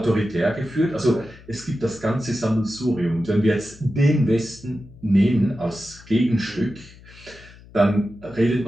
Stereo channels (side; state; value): left; noise; hum, 22 dB below the sound